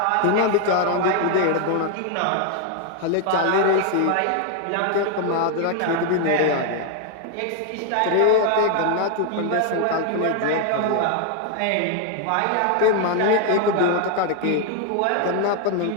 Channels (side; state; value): both; different; correlation 0.00